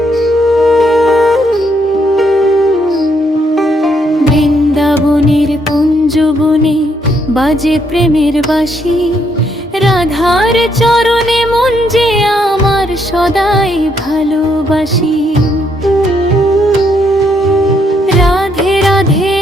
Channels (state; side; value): normal; both; correlation 0.73